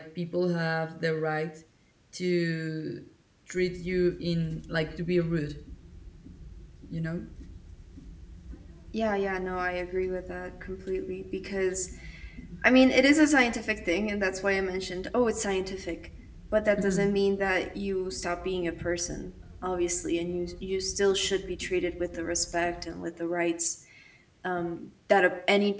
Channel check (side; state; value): both; identical; correlation 1.00